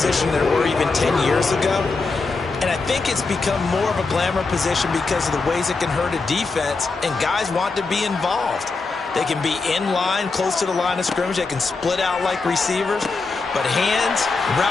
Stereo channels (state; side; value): quieter; right; 4.0 dB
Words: than there were even 10 years ago. And I think it's become more of a glamour position because of the ways it can hurt a defense, and guys want to be involved. They can be in line, close to the line of scrimmage. They can split out like receivers. But hands,